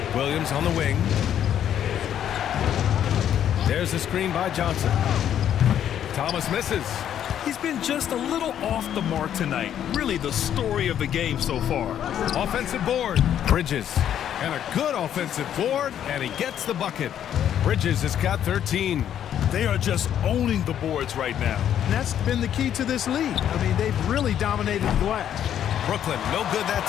Williams on the wing. There's a screen by Johnson. Thomas misses. He's been just a little off the mark tonight. Really the story of the game so far. Offensive board. Bridges. And a good offensive board, and he gets the bucket. Bridges has got 13. They are just owning the boards right now. And that's been the key to this league. I mean, they've really dominated the glass. Brooklyn, no good that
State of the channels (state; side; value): quieter; right; 10.1 dB